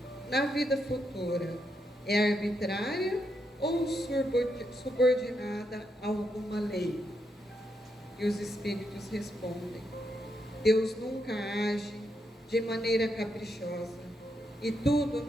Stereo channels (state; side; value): normal; both; correlation 0.81